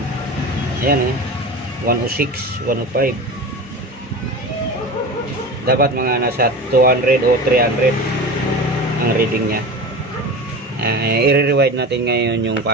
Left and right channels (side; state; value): both; normal; correlation 0.31